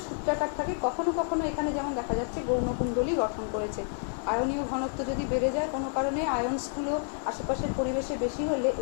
সূত্রাকার থাকে, কখনো কখনো এখানে যেমন দেখা যাচ্ছে গৌণকুণ্ডলী গঠন করেছে। আয়নীয় ঘনত্ব যদি বেড়ে যায় কোনো কারণে, আয়নসগুলো আশেপাশের পরিবেশে বেশি হলে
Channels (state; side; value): silent; right; 58 dB below the other